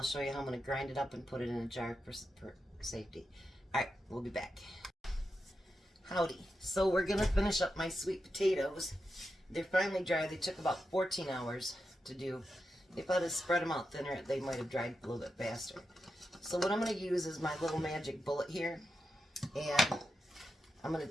show you how I'm going to grind it up and put it in a jar for safety. Alright, we'll be back. Howdy. So we're going to finish up my sweet potatoes. They're finally dry. They took about 14 hours to do. If I'd have spread them out thinner, they might have dried a little bit faster. So what I'm going to use is my little magic bullet here. And I'm going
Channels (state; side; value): normal; both; correlation 0.88